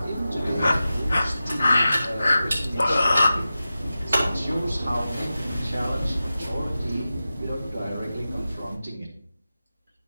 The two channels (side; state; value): both; inverted; correlation -0.93